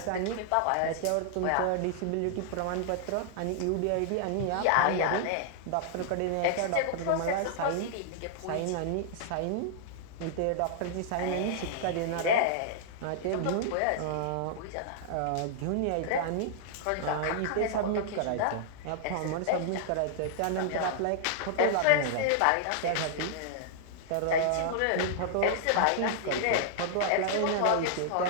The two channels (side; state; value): both; different; correlation -0.01